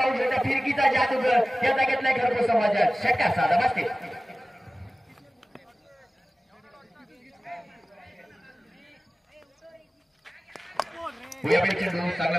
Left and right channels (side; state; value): both; normal; correlation 0.97